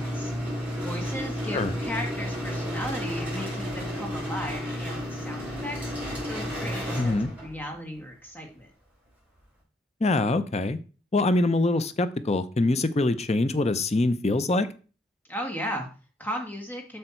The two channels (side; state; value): both; normal; correlation 0.71